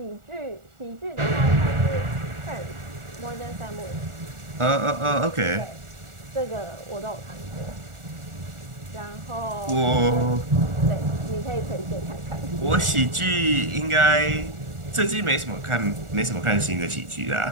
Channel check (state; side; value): late; left; 1.4 ms